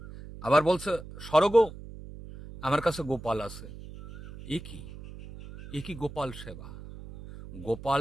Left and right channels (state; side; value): noise; right; hum, 14 dB below the sound